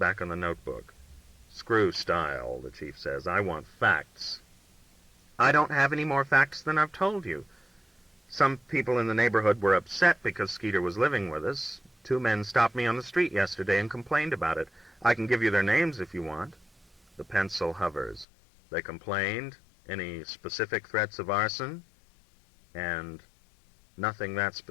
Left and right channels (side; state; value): right; drops out; at 18.2 s